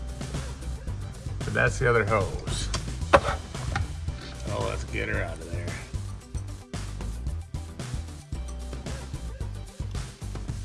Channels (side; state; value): both; identical; correlation 1.00